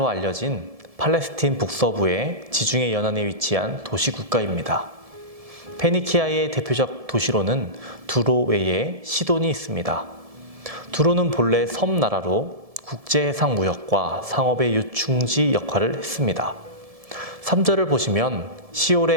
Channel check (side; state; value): left; late; 1.7 ms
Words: 알려진 팔레스틴 북서부의 지중해 연안에 위치한 도시 국가입니다. 페니키아의 대표적 도시로는 두로 외에 시돈이 있습니다. 두로는 본래 섬나라로 국제해상 무역과 상업의 유충지 역할을 했습니다. 3절을 보시면